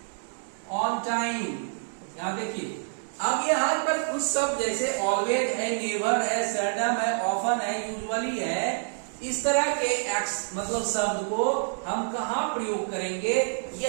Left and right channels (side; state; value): left; silent; digital silence